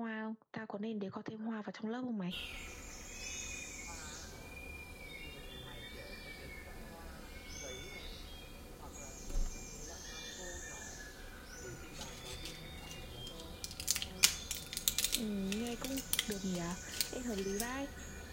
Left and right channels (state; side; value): identical; both; correlation 1.00